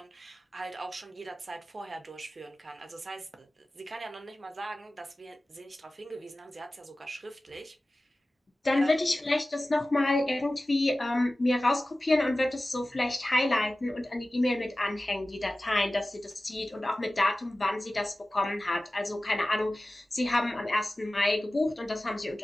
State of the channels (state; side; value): normal; both; correlation 0.96